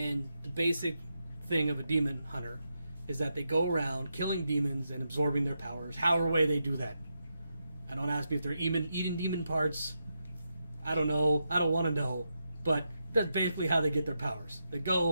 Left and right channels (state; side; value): inverted; both; correlation -0.85